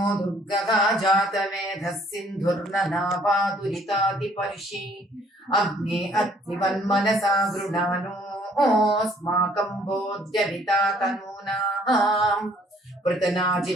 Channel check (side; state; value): both; normal; correlation 0.61